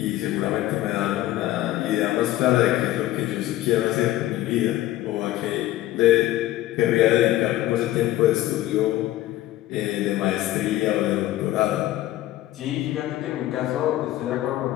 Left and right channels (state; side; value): quieter; right; 15.1 dB